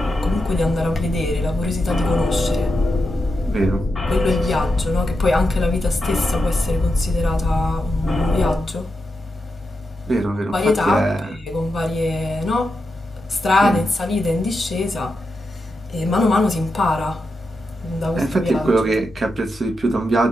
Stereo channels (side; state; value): both; normal; correlation 0.87